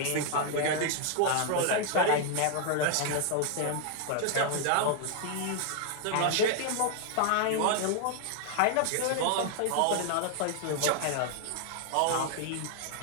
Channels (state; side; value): different; both; correlation 0.00